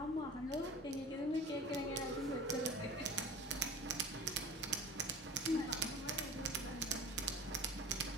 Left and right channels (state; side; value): normal; both; correlation 0.39